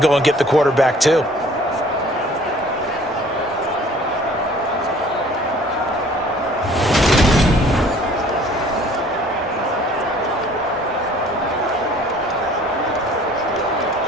go and get the quarterback too.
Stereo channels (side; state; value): both; normal; correlation 0.53